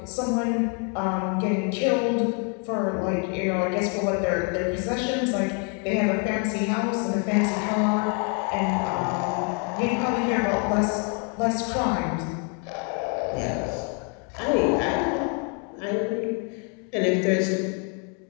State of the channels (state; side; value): quieter; right; 38.8 dB